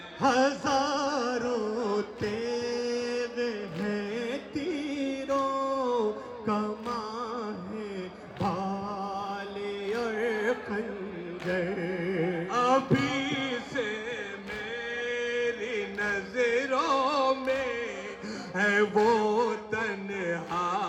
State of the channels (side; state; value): both; identical; correlation 1.00